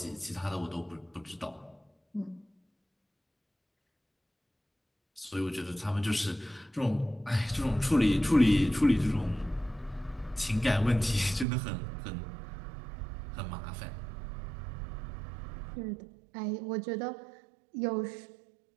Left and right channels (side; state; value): left; drops out; at 11.5 s